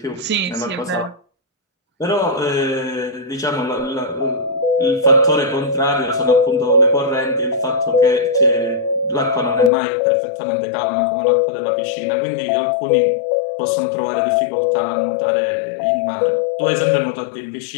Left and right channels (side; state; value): right; drops out; at 9.7 s